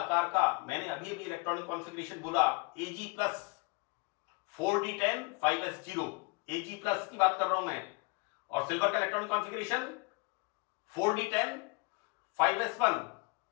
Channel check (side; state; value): right; quieter; 30.5 dB